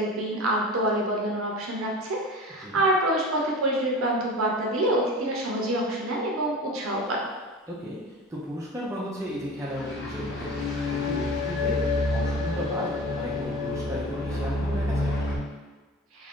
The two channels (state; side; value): normal; both; correlation 0.34